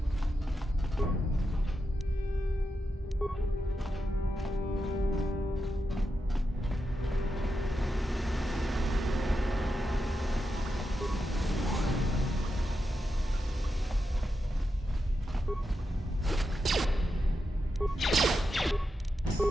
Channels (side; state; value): both; normal; correlation 0.87